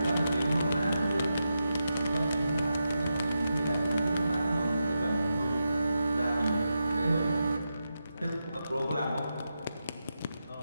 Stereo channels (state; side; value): inverted; both; correlation -0.88